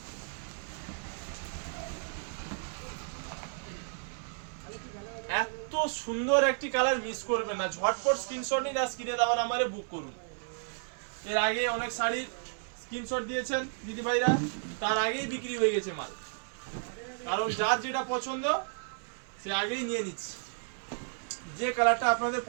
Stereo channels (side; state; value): left; silent; 56 dB below the other